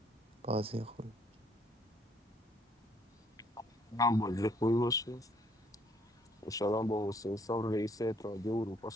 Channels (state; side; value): normal; both; correlation 0.65